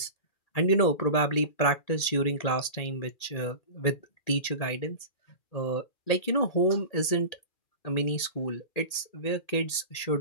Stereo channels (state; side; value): late; right; 2.4 ms